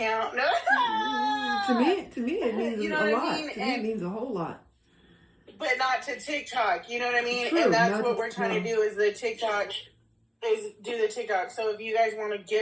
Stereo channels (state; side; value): identical; both; correlation 1.00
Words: No. To me, it means You know a what I lot. mean? To me, it means a whole lot. But not to TikTok. You know what I mean? True, and that's not what to- we're trying to do is the TikTok. Is do the TikTok. So if you guys want to